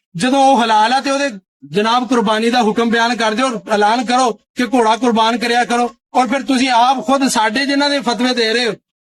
جدوں وہ حلال ہے تے او دے جناب قربانی دا حکم بیان کر دیو اور اعلان کرو کہ گھوڑا قربان کریا کرو. اور پھر تسی آپ خود ساڈے جنہاں دے فتوی دے رہے ہو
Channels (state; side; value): identical; both; correlation 1.00